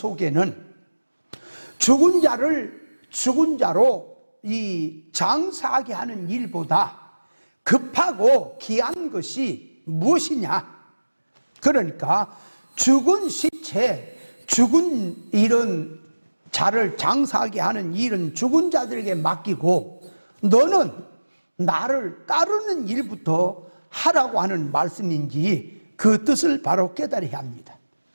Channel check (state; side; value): inverted; both; correlation -1.00